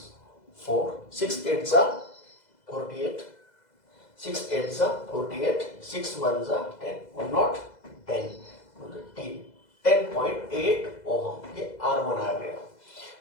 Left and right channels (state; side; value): late; right; 2.0 ms